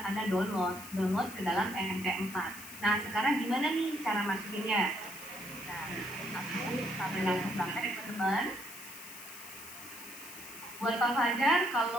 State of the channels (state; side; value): noise; left; hiss, 13 dB below the sound